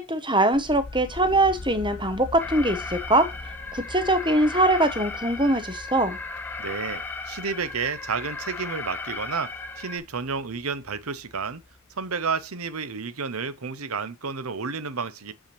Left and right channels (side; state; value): both; normal; correlation 0.30